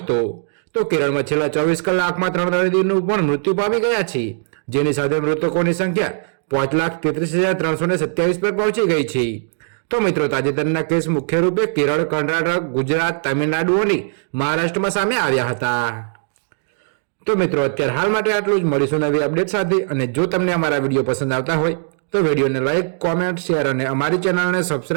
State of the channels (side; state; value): left; silent; digital silence